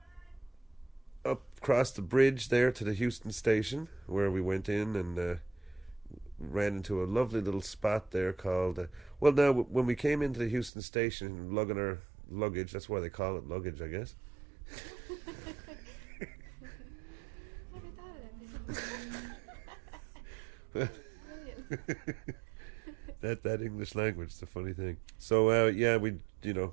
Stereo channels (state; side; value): drops out; left; at 10.7 s